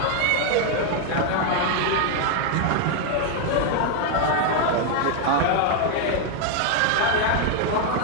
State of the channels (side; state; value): both; different; correlation 0.01